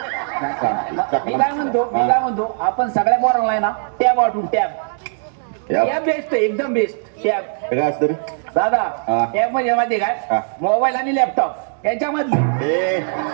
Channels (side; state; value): left; silent; digital silence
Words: मी काय म्हणतो आपण सगळ्या पोरांना आहे ना टॅब वाटून. टॅब बेस्ट एकदम बेस्ट. टॅब काय असतं रे दादा? टॅब म्हणजे माहिती काय? मोबाईल आणि लॅपटॉप याच्यामध्ये.